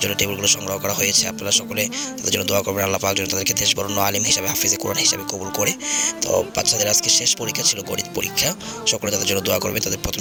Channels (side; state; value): both; identical; correlation 1.00